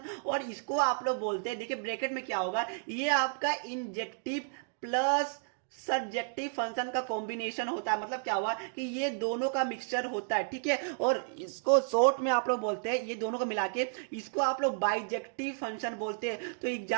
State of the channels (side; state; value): left; silent; digital silence